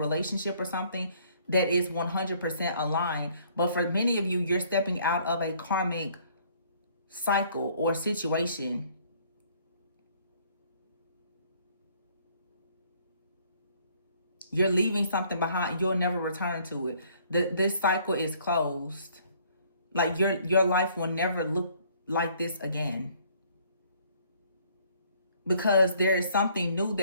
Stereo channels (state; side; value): inverted; both; correlation -0.61